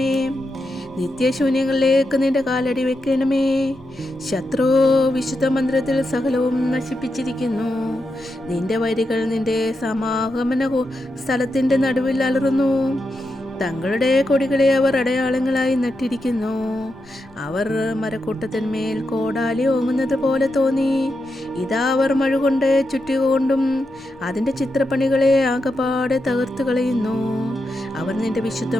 നിത്യശൂന്യങ്ങളിലേക്ക് നിന്റെ കാലടി വെക്കണമേ. ശത്രു വിശുദ്ധ മന്ദിരത്തിൽ സകലവും നശിപ്പിച്ചിരിക്കുന്നു. നിന്റെ വരികൾ നിന്റെ സമാഗമന സ്ഥലത്തിന്റെ നടുവിൽ അലറുന്നു. തങ്ങളുടെ കൊടികളെ അവർ അടയാളങ്ങളായി നട്ടിരിക്കുന്നു. അവർ മരക്കൂട്ടത്തിന്മേൽ കോടാലി ഓങ്ങുന്നത് പോലെ തോന്നി. ഇതാ അവർ മഴ കൊണ്ട് ചുറ്റുകൊണ്ടും അതിൻ്റെ ചിത്രപ്പണികളെ ആകപ്പാടെ തകർത്തു കളയുന്നു. അവർ നിന്റെ വിശുദ്ധ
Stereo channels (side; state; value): both; normal; correlation 0.86